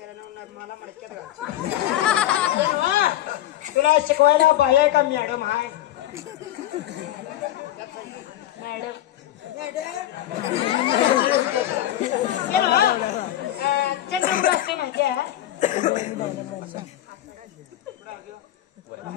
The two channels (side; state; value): right; quieter; 13.3 dB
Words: तुला शिकवायला बाय का मॅडम हाय चंद्रपूर असते माहिती आहे